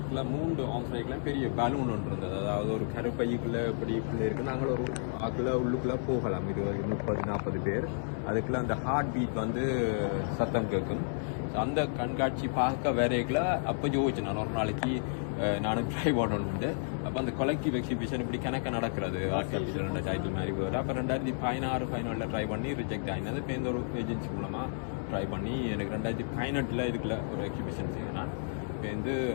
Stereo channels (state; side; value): silent; right; digital silence